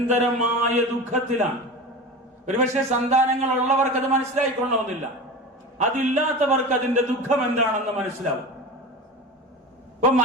ദുഃഖത്തിലാണ്. ഒരുപക്ഷെ സന്താനങ്ങൾ ഉള്ളവർക്ക് അത് മനസ്സിലായിക്കൊള്ളണമെന്നില്ല, അതില്ലാത്തവർക്ക് അതിന്റെ ദുഃഖം എന്താണെന്ന് മനസ്സിലാവും. ഇപ്പൊ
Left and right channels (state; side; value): normal; both; correlation 0.30